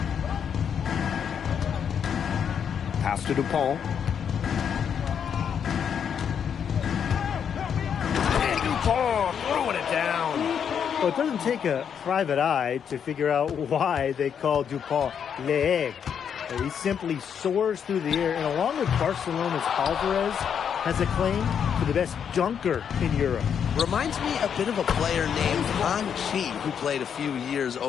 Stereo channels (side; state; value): right; quieter; 7.8 dB